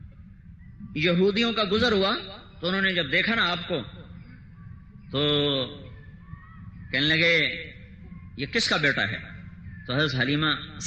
یہودیوں کا گزر ہوا تو انہوں نے جب دیکھا نا آپ کو تو کہنے لگے یہ کس کا بیٹا ہے؟ تو حضرت حلیمہ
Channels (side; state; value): both; identical; correlation 1.00